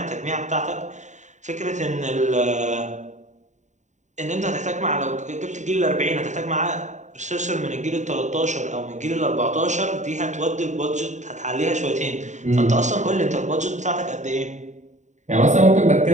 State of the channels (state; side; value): late; left; 0.35 ms